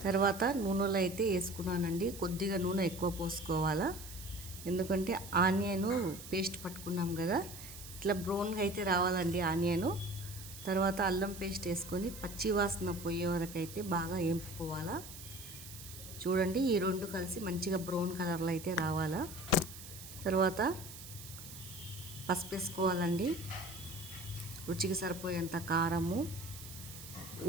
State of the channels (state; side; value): noise; right; hiss, 13 dB below the sound